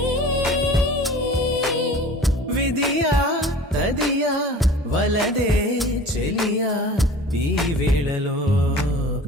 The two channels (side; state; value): both; normal; correlation 0.42